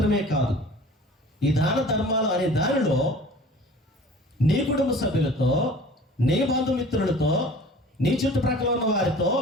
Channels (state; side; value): normal; both; correlation 0.45